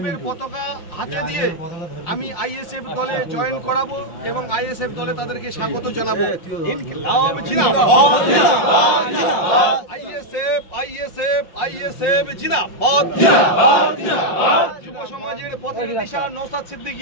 এর পতাকা হাতে দিয়ে আমি আইএসএফ দলে জয়েন করাবো এবং আইএসএফ দলে তাদেরকে স্বাগত জানাবো। ইনকিলাব জিন্দাবাদ, আইএসএফ আইএসএফ আইএসএফ জিন্দাবাদ, যুব সমাজের পথের দিশা নওশাদ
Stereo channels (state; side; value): late; right; 5.7 ms